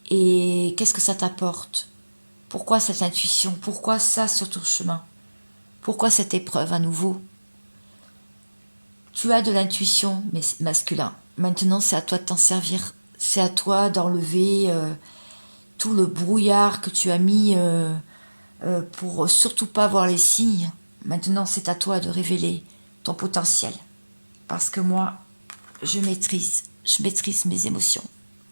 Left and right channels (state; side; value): inverted; both; correlation -1.00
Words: Et qu'est-ce que ça t'apporte? Pourquoi cette intuition? Pourquoi ça sur ton chemin? Pourquoi cette épreuve à nouveau? Tu as de l'intuition, mais masculin. Maintenant, c'est à toi de t'en servir. C'est à toi d'enlever tout le brouillard que tu as mis pour surtout pas voir les signes. Maintenant, c'est à toi de révéler ton potentiel. Parce que moi, je maîtrise mes émotions.